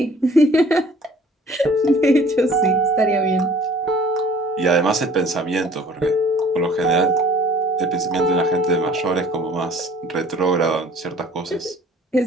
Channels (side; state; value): both; normal; correlation 0.52